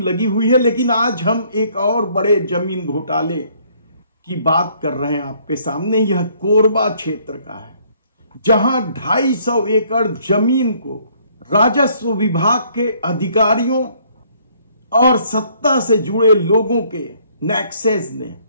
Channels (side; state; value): both; inverted; correlation -0.63